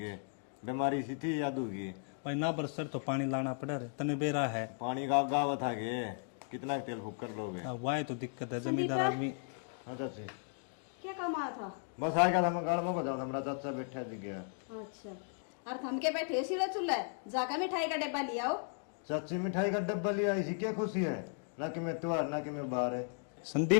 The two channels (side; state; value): right; silent; 54 dB below the other